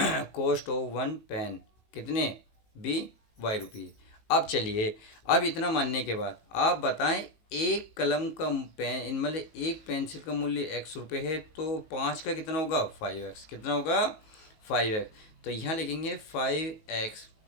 cost of 1 pen कितने बी y रुपीज़। अब चलिए, अब इतना मानने के बाद आप बताएं एक कलम का पेन मतलब एक पेंसिल का मूल्य x रुपये है, तो 5 का कितना होगा 5x, कितना होगा 5x। तो यहाँ लिखेंगे 5x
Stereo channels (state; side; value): late; right; 19 ms